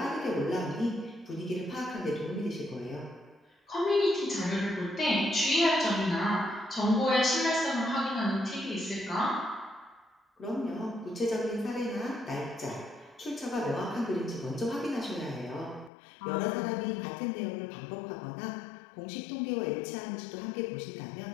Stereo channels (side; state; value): right; drops out; at 15.9 s